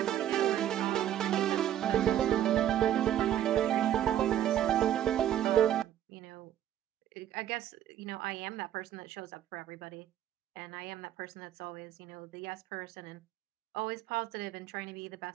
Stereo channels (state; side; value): quieter; left; 11.3 dB